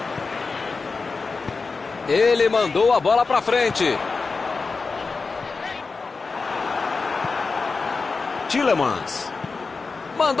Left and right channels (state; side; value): quieter; right; 4.3 dB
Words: Ele mandou a bola para frente. Tielemans.